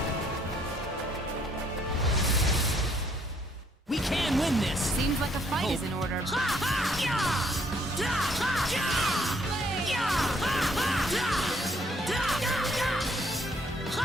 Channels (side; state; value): both; normal; correlation 0.67